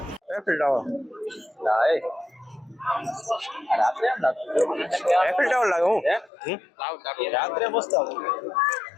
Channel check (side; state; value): right; drops out; at 6.3 s